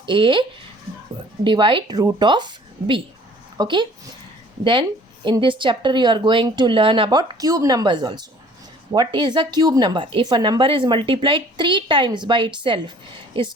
a divide root of b. Okay. Then in this chapter you are going to learn about cube numbers also. What is a cube number? If a number is multiplied 3 times by itself, is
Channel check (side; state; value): both; normal; correlation 0.53